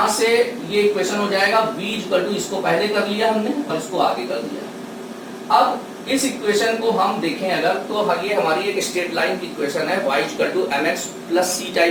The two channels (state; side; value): identical; both; correlation 1.00